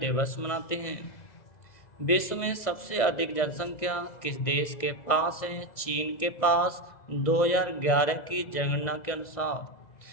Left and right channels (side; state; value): right; late; 1.6 ms